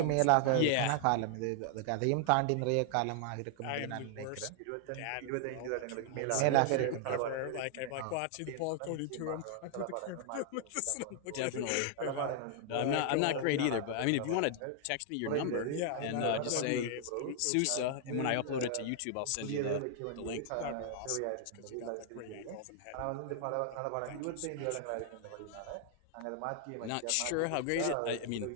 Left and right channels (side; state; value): both; different; correlation 0.00